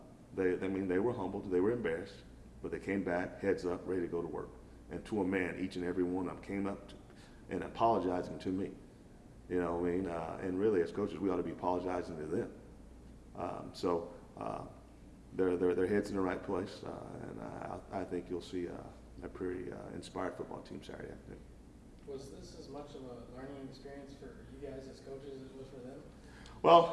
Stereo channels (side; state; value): both; identical; correlation 1.00